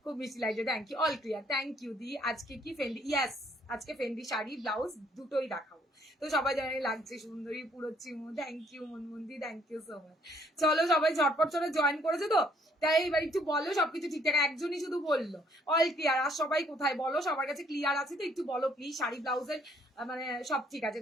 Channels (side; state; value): both; normal; correlation 0.65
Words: খুব মিষ্টি লাগছে, thank you, all clear, thank you দি। আজকে কি ফেন্ডি? ইয়াস, আজকে ফেন্ডি শাড়ি ব্লাউজ দুটোই দেখাবো, তো সবাই জানে লাগছে সুন্দরী পুরো চিমু, থ্যাংক ইউ মনমন্দি, থ্যাংক ইউ সো মাচ। চলো সবাই ঝটপট চলে জয়েন করেছে তো, তাই এবার একটু বলো সবকিছু ঠিকঠাক, একজনই শুধু বললো অল ক্লিয়ার, আর সবাই কোথায় বলো, সবার কাছে ক্লিয়ার আছে তো, একটু বলো প্লিজ। শাড়ি ব্লাউজের মানে সব ঠিক আছে,